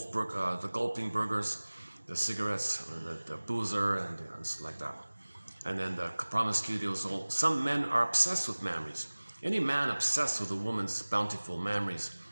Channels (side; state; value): both; inverted; correlation -1.00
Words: gulping burgers, the cigarettes, the boozer, and like that. And then the promiscuity was all. Some men are obsessed with memories. Any man obsessed with a woman's bountiful memories